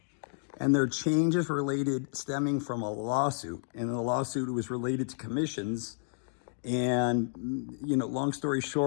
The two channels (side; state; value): right; silent; digital silence